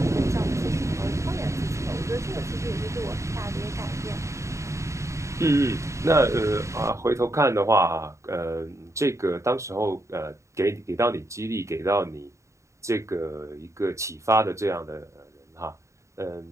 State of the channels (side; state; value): left; late; 0.14 ms